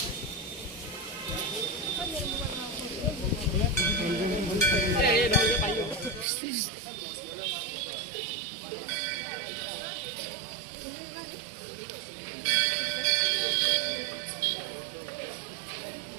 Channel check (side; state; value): left; drops out; at 6.2 s